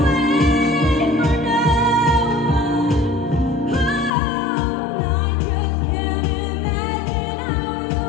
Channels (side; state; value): right; drops out; at 4.1 s